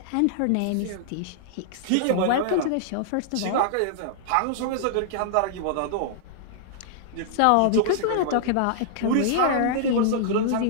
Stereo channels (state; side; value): different; both; correlation -0.01